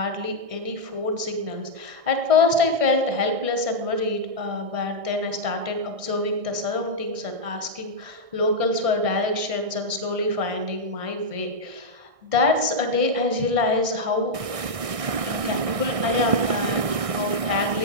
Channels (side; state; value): left; late; 1.6 ms